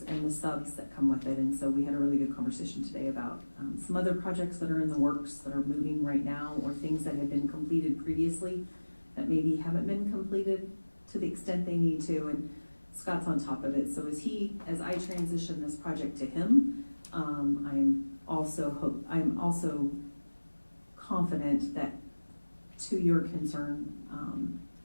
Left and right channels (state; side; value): inverted; both; correlation -1.00